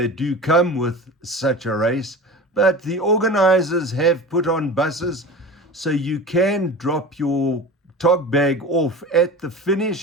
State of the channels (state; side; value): normal; both; correlation 0.34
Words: do come with such a race, but the organizers have put on buses so you can drop your tog bag off at the